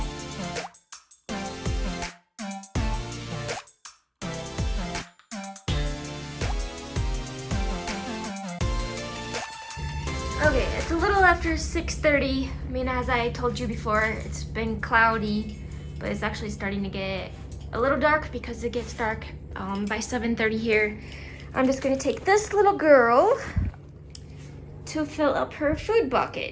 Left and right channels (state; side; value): identical; both; correlation 1.00